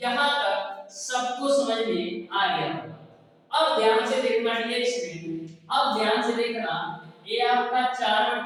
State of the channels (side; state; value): both; identical; correlation 1.00